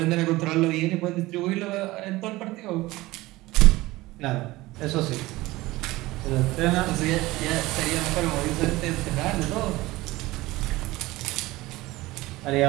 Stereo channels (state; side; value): quieter; left; 19.3 dB